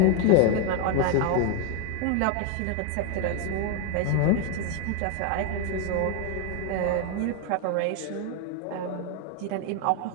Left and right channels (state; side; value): different; both; correlation 0.01